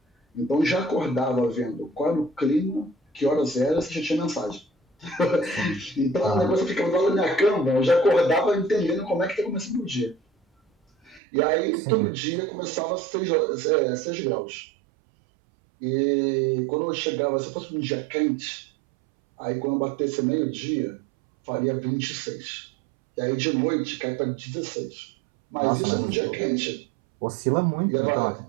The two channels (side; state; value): left; drops out; at 11.2 s